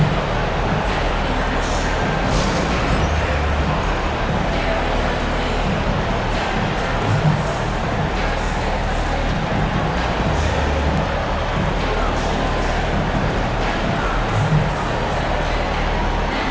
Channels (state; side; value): identical; both; correlation 1.00